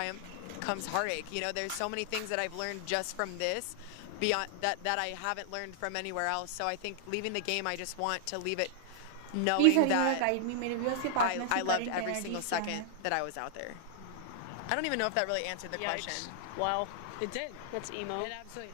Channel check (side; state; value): both; different; correlation -0.01